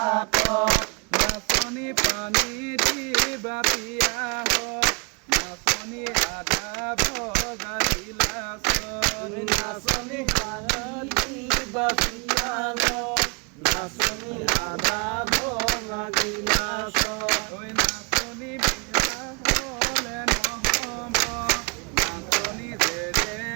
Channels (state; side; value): quieter; left; 31.2 dB